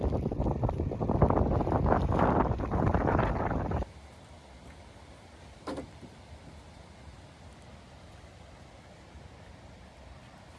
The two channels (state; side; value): identical; both; correlation 1.00